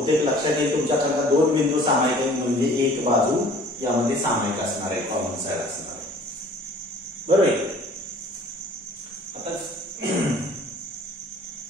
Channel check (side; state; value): both; normal; correlation 0.51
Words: लक्षात येईल तुमच्याकरता. दोन बिंदू सामायिक आहेत म्हणजे एक बाजू यामध्ये सामायिक असणार आहे, कॉमन साइड असणार आहे. बरोबर आहे. आता